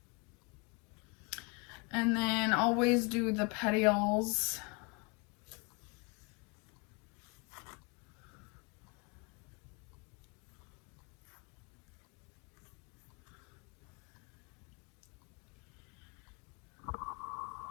And then always do the petioles.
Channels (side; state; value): right; quieter; 30.4 dB